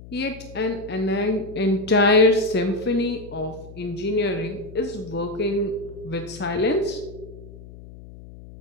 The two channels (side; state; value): left; noise; hum, 17 dB below the sound